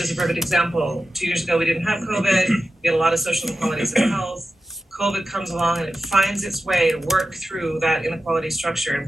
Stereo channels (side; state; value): both; normal; correlation 0.92